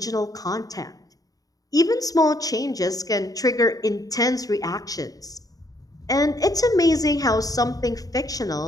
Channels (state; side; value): late; right; 0.18 ms